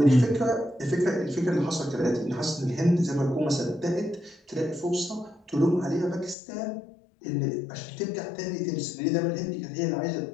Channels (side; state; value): right; drops out; at 6.4 s